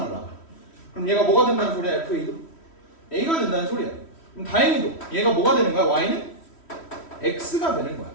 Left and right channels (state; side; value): late; right; 3.1 ms